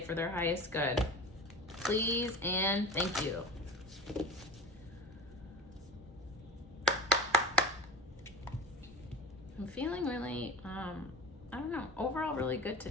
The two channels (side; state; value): both; normal; correlation 0.32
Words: their highest good? Please and thank you. I'm feeling really, I don't know, overall really good